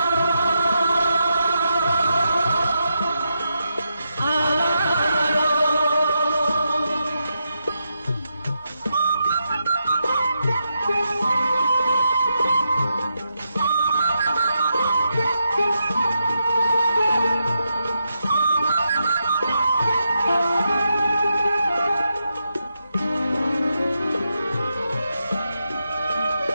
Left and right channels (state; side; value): inverted; both; correlation -0.85